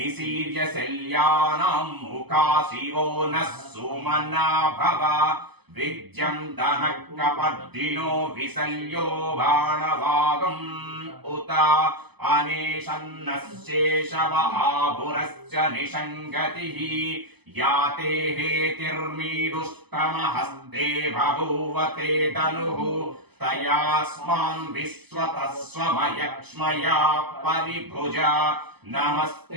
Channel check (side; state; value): left; late; 0.99 ms